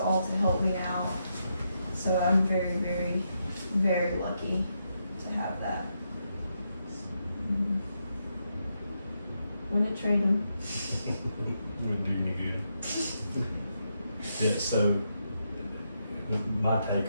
to help me out. So I'm very, very, very lucky to have that. Wouldn't trade him. Wouldn't do any good. Yeah, so my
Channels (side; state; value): both; inverted; correlation -0.82